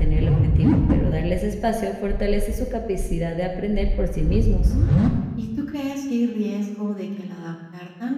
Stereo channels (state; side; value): identical; both; correlation 1.00